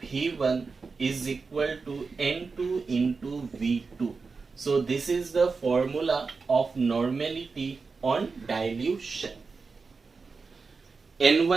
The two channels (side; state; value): left; quieter; 4.6 dB